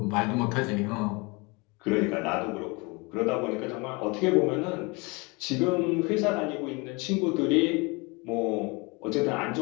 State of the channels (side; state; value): right; quieter; 27.7 dB